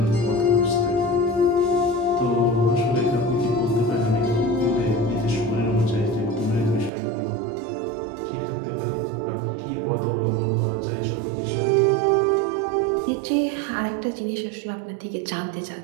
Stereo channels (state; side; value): drops out; left; at 6.9 s